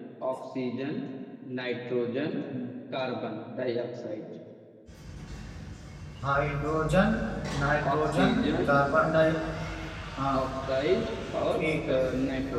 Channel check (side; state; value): both; identical; correlation 1.00